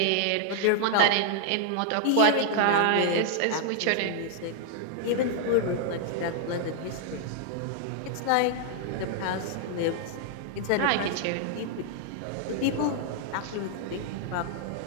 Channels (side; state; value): both; different; correlation 0.00